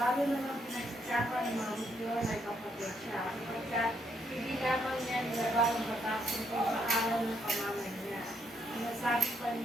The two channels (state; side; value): normal; both; correlation 0.74